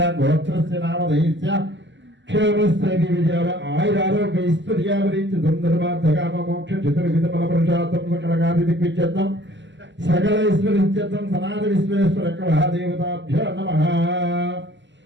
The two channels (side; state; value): left; late; 0.53 ms